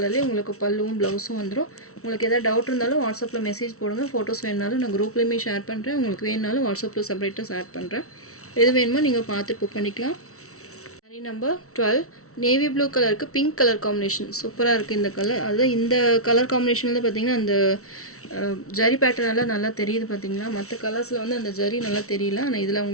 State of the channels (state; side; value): late; right; 0.63 ms